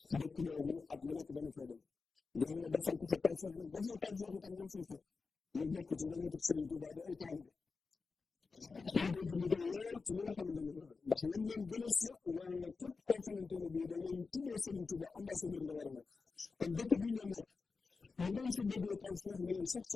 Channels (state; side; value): quieter; right; 4.5 dB